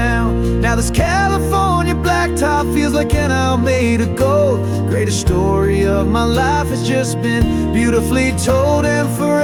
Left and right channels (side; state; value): both; identical; correlation 1.00